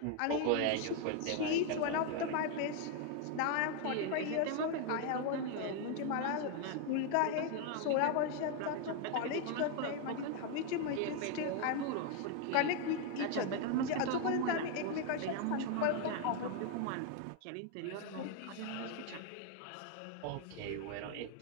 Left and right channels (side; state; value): both; different; correlation 0.01